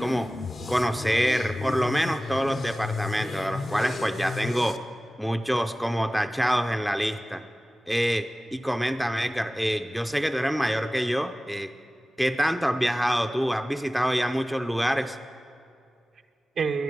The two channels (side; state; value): both; normal; correlation 0.97